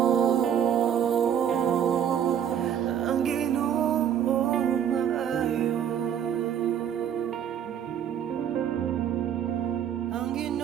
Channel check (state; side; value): quieter; left; 9.1 dB